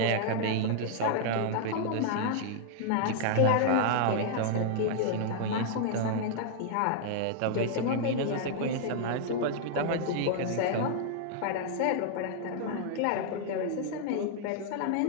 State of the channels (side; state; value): both; different; correlation -0.01